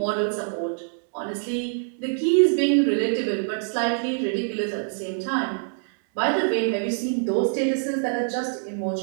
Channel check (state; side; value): silent; left; 62 dB below the other